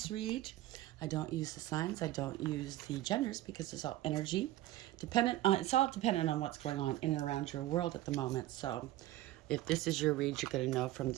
read. I don't use the signs, I don't use the genders because it's all energy. It's all dependent on what's going on in and around your world at the moment. So if this is your read, you're going to know from the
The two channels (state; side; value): quieter; left; 15.4 dB